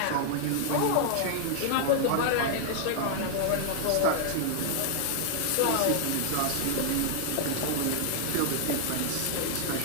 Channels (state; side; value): different; both; correlation 0.00